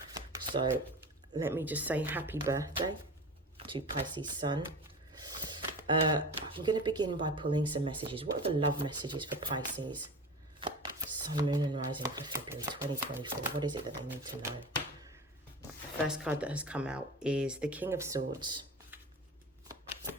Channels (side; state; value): both; normal; correlation 0.32